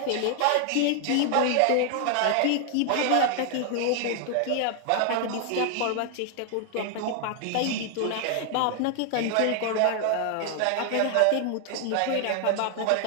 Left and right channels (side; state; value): both; different; correlation 0.00